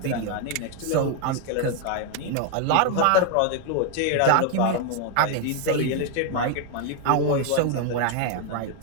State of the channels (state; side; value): different; both; correlation 0.00